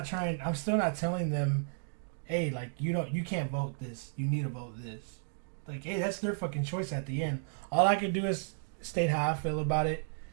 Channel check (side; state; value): left; silent; digital silence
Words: telling them, hey, like, you can't vote this. You need to vote this. Like, hey, that's their fucking choice at the end. All I can do is state how I feel about it.